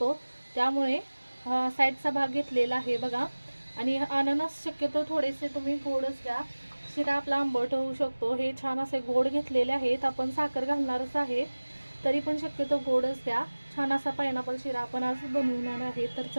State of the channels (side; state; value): both; inverted; correlation -1.00